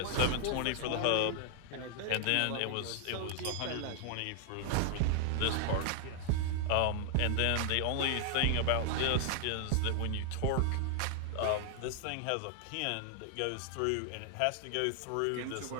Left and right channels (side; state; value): both; different; correlation -0.01